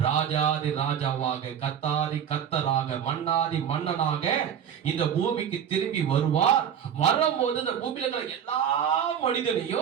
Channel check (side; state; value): left; quieter; 8.7 dB